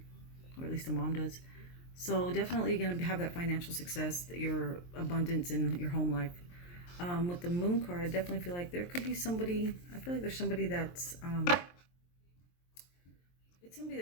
or at least the mom does. So definitely going to have that financial success, your abundance in your home life. With the Moon card, I definitely feel like there could be somebody, I feel like there's somebody that's, it's somebody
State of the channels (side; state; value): right; late; 23 ms